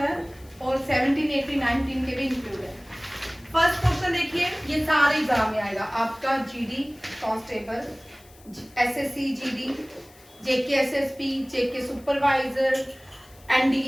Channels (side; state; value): left; noise; hiss, 26 dB below the sound